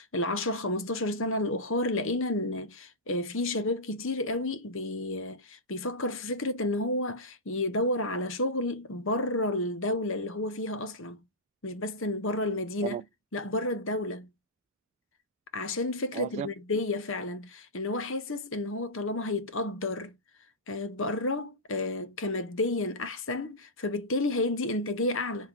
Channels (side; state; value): both; normal; correlation -0.13